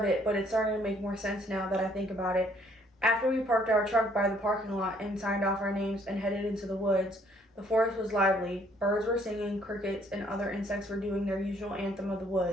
it, but it's starting to make more sense now that I think about it. After we parked our truck by the parking lot and signed off our names and headed into the woods, the forest was lively. Birds were singing, crickets and other insects were doing their usual anthem of the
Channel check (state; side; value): normal; both; correlation 0.64